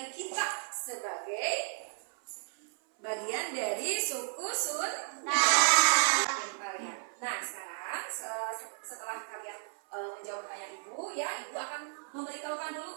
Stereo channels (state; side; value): silent; left; 55 dB below the other